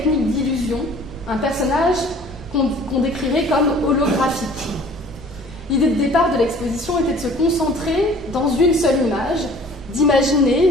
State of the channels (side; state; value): both; normal; correlation 0.50